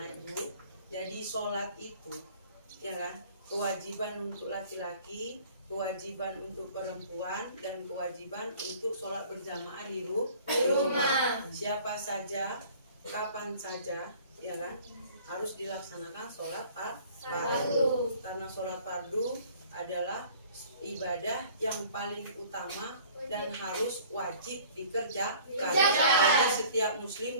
ibu, jadi sholat itu ya kan, kewajiban untuk laki-laki, kewajiban untuk perempuan, dan kewajiban untuk sholat berjamaah di rumah. Siapa saja, kapan saja, ya kan, harus dilaksanakan sholat fardu. Karena sholat fardu adalah ibadah yang paling utama dan harus wajib dikerjakan bagi setiap muslim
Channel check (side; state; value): both; inverted; correlation -0.51